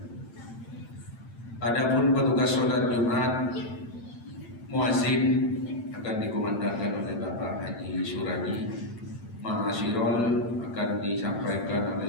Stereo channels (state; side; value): late; right; 8.9 ms